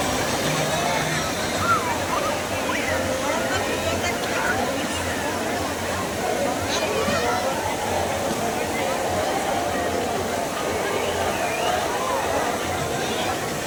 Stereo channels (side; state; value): both; identical; correlation 1.00